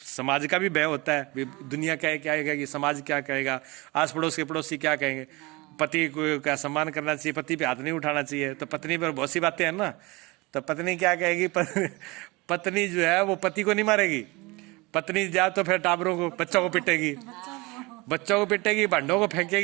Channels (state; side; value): quieter; left; 24.3 dB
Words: का भी भय होता है, दुनिया क्या कहेगा, कि समाज क्या कहेगा, आस पड़ोस के पड़ोसी क्या कहेंगे। पति को का सम्मान करना चाहिए, पति पे हाथ नहीं उठाना चाहिए। तो पत्नी पर बहुत सी बातें हैं ना, तो पत्नी क्या कहेगी, पत्नी जो है वो पति को नहीं मारेगी। पत्नी जा तो फिर टाबरों को, बच्चों को पिटेगी, भांडों को